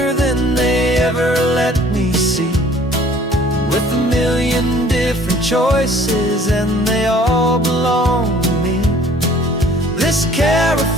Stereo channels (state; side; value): normal; both; correlation 0.54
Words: than they ever let me see, with a million different choices and they all belong to me. This